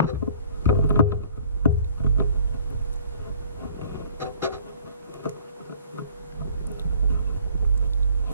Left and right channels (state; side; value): inverted; both; correlation -0.54